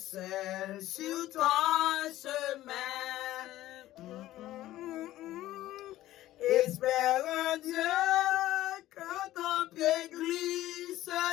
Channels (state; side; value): quieter; right; 14.9 dB